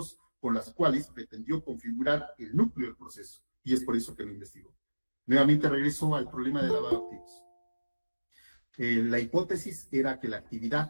con las cuales pretendió configurar el núcleo del proceso, y es por eso que lo investigó. Nuevamente regreso al problema de lavado de activos. La hipótesis era que la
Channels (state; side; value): inverted; both; correlation -1.00